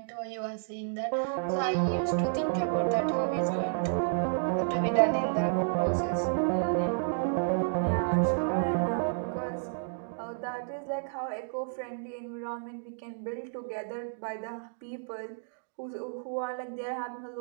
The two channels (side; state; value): left; silent; digital silence